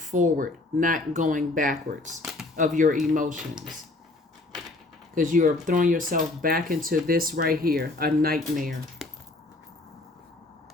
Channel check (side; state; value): right; quieter; 3.0 dB